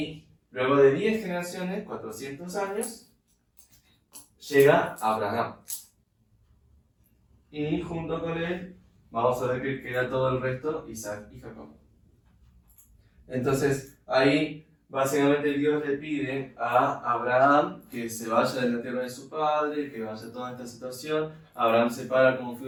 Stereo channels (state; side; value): identical; both; correlation 1.00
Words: luego de 10 generaciones, 400 años, llega Abraham. Y junto con él, vamos a ver que queda todo el resto, Isaac y Jacob. Entonces, ahí básicamente Dios le pide a Abraham que se vaya de la tierra de su padre, que vaya a toda esta situación. Abraham se para como